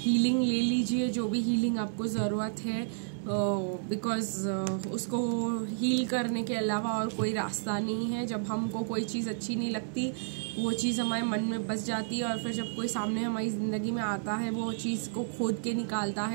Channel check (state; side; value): silent; left; 57 dB below the other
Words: ले लीजिए, जो भी हीलिंग आपको ज़रूरत है, बिकॉज़ उसको हील करने के अलावा और कोई रास्ता नहीं है। जब हमको कोई चीज़ अच्छी नहीं लगती, वो चीज़ हमारे मन में बस जाती है और फिर जब कोई सामने हमारी ज़िंदगी में आता है, वो चीज़ को खोद के निकालता